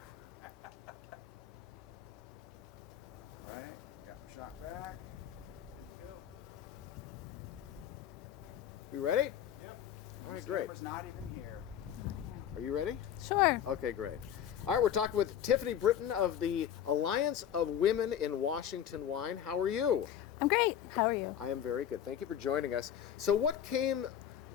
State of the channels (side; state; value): right; quieter; 9.7 dB